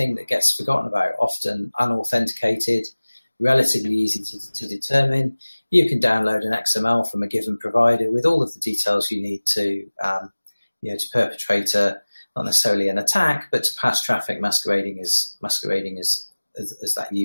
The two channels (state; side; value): inverted; both; correlation -1.00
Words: that gets forgotten about, often unauthenticated, relatively easy to determine. You can download an XML from a given provider with all of the details you need to perpetrate not necessarily an attack, but to pass traffic masquerading as that